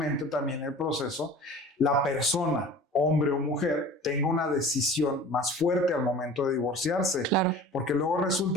también el proceso, la persona, hombre o mujer, tenga una decisión más fuerte al momento de divorciarse. Porque luego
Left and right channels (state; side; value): normal; both; correlation 0.42